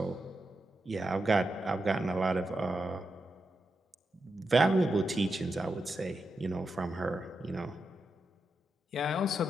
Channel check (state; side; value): normal; both; correlation 0.87